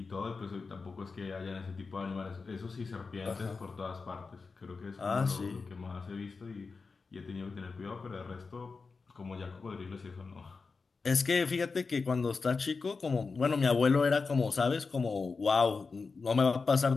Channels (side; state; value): right; quieter; 4.5 dB